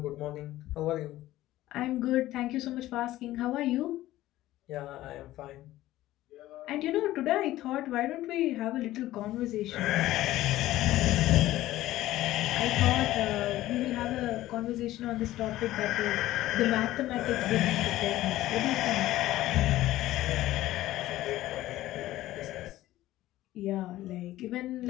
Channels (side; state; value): right; quieter; 15.5 dB